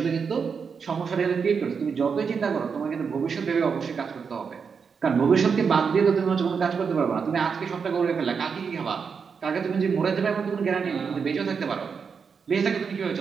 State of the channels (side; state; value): left; quieter; 5.9 dB